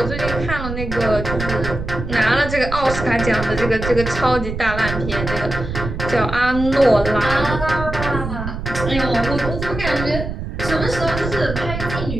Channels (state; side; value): noise; right; rumble, 6 dB below the sound